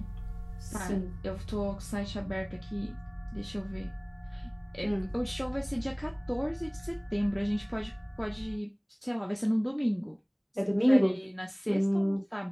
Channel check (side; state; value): both; identical; correlation 1.00